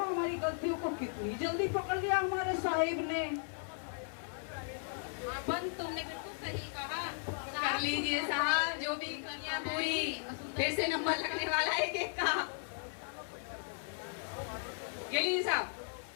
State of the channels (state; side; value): silent; right; 54 dB below the other